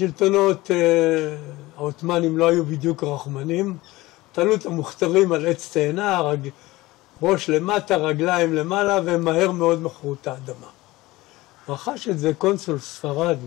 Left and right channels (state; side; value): quieter; right; 19.3 dB